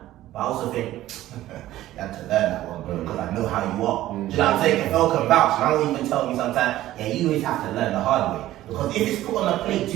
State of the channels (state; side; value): quieter; left; 14.7 dB